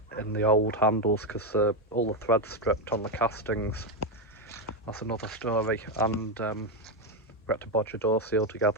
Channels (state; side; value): normal; both; correlation 0.07